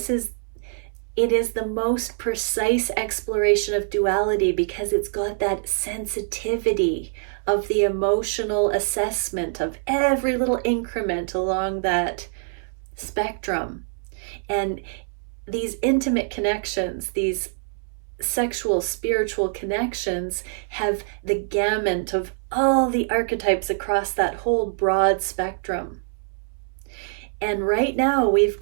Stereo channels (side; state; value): left; silent; 62 dB below the other